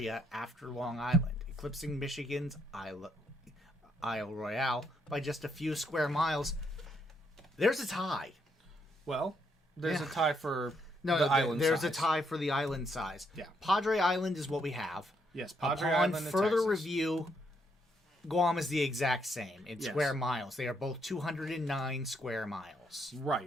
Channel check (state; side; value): normal; both; correlation 0.74